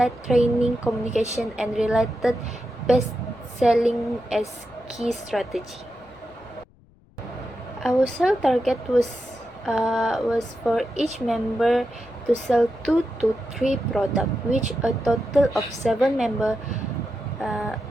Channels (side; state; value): left; noise; rumble, 30 dB below the sound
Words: training, communication, and related best selling as key strategy. Our sale target was for each member to sell 2 to 3 products, which a total of 7 members